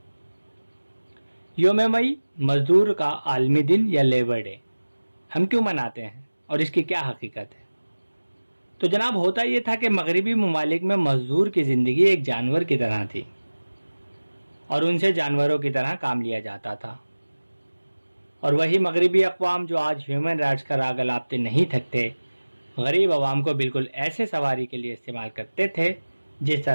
یوم مئی مزدور کا عالمی دن یا لیبر ڈے ہم کیوں مناتے ہیں اور اس کی کیا حقیقت ہے؟ تو جناب، ہوتا یہ تھا کہ مغربی ممالک میں مزدور کی زندگی ایک جانور کی طرح تھی، اور ان سے جانوروں کی طرح کام لیا جاتا تھا، اور وہی مغربی اقوام جو آج ہیومن رائٹس کا راگ الاپتے نہیں تھکتے، غریب عوام کو بالکل ایسے سواری کے لیے استعمال کرتے تھے جس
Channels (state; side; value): inverted; both; correlation -1.00